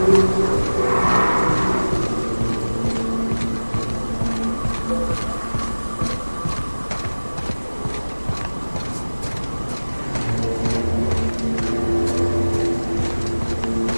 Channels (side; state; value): both; inverted; correlation -1.00